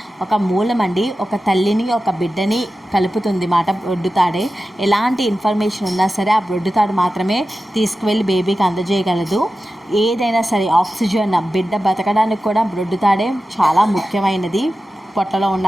ఒక మూలం అండి. ఒక తల్లిని ఒక బిడ్డని కలుపుతుంది మాట బ్రొడ్డుతాడే. ఎలాంటి ఇన్ఫర్మేషన్ ఉన్నా సరే ఆ బ్రొడ్డుతాడు మాత్రమే తీసుకువెళ్ళి బేబీకి అందజేయగలదు. ఏదైనా సరే ఆక్సిజన్ బిడ్డ బతకడానికి కూడా బ్రొడ్డుతాడే చాలా ముఖ్యమైనది. పొట్టలో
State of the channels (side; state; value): both; normal; correlation 0.93